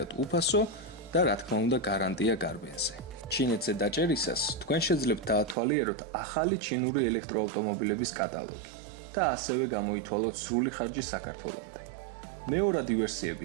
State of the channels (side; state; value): left; drops out; at 5.6 s